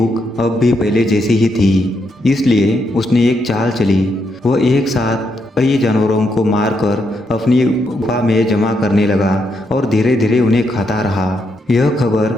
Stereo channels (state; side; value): normal; both; correlation 0.79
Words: अब भी पहले जैसी ही थी। इसलिए उसने एक चाल चली। वह एक साथ कई जानवरों को मारकर अपनी गुफा में जमा करने लगा और धीरे धीरे उन्हें खाता रहा। यह खबर